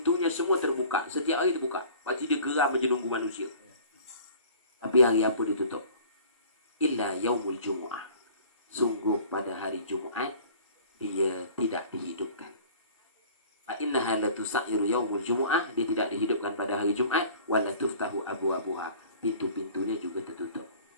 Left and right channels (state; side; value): inverted; both; correlation -0.47